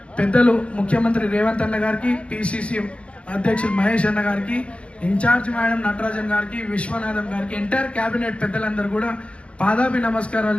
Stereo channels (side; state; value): right; late; 0.060 ms